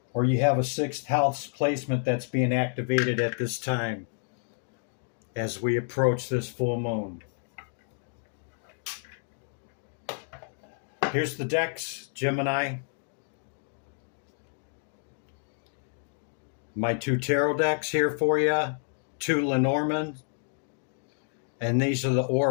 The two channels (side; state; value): right; silent; digital silence